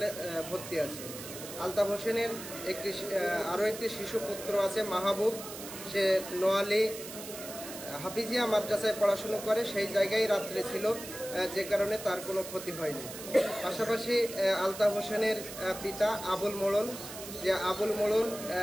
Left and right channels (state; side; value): noise; right; hiss, 11 dB below the sound